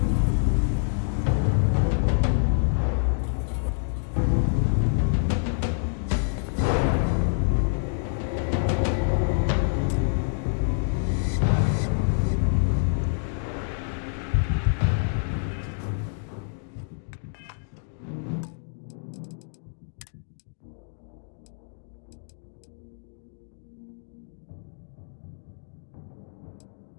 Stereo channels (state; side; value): silent; right; digital silence